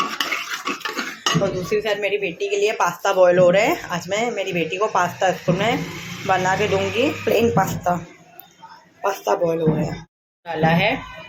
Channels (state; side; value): identical; both; correlation 1.00